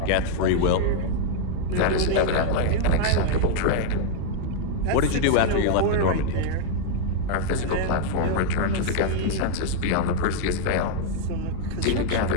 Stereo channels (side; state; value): both; different; correlation 0.00